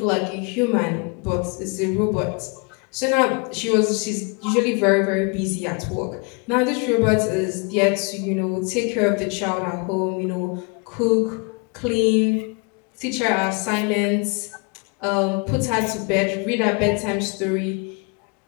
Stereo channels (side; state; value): right; quieter; 32.3 dB